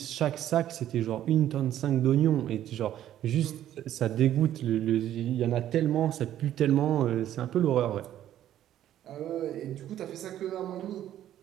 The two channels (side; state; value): left; quieter; 11.8 dB